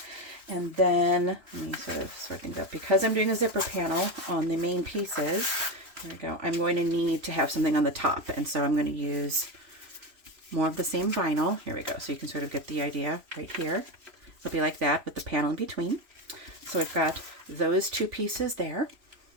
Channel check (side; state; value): left; late; 3.0 ms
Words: And then let me sort of sort things up. Because I'm doing a zipper panel on the main pieces, there we go, I'm going to need to have something on the top, and so I'm going to use more of the same vinyl. Here we go, so you can sort of get the idea right here. It'll be like that with the panel in between. So I've got those two pieces there.